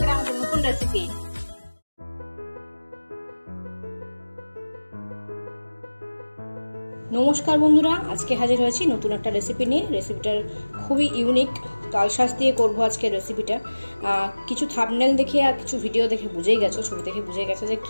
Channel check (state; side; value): inverted; both; correlation -1.00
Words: আমাদের নতুন রেসিপি। নমস্কার বন্ধুরা, আজকে হাজির হয়েছি নতুন একটা রেসিপি নিয়ে। রেসিপিটার খুবই ইউনিক, তালশাঁস দিয়ে করব আজকে রেসিপিটা। কিছু থাম্বনেল দেখে আর কিছু ভিডিও দেখে বুঝেই গেছো, ছবি দেখে বুঝে গেছো যে